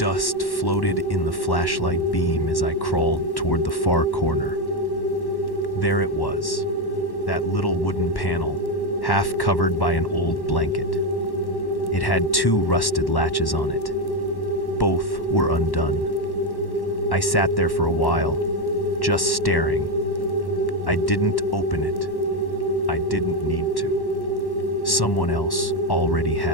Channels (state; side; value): late; right; 1.1 ms